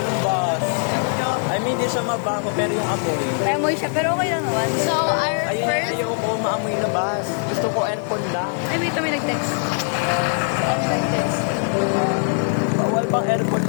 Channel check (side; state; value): right; silent; 56 dB below the other